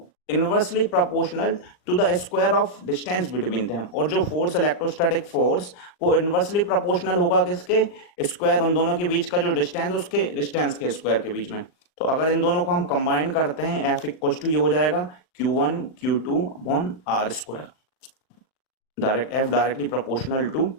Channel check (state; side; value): late; right; 39 ms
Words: inversely proportional to the square of distance between them, और जो फोर्स इलेक्ट्रोस्टैटिक फोर्स वो इनवर्सली प्रोपोर्शनल होगा किसके, स्क्वायर, उन दोनों के बीच का जो डिस्टेंस उसके डिस्टेंस के स्क्वायर के बीच में। तो अगर इन दोनों को हम कंबाइन करते हैं, F इक्वल टू ये हो जाएगा Q1 Q2 upon R square, direct F directly proportional to